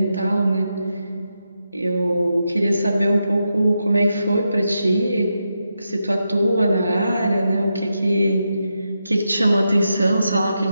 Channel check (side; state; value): both; inverted; correlation -0.86